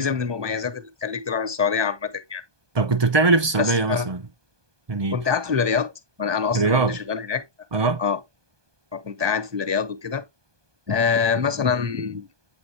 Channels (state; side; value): late; left; 1.2 ms